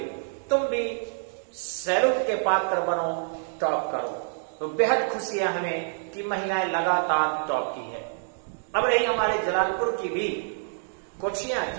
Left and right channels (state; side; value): silent; left; digital silence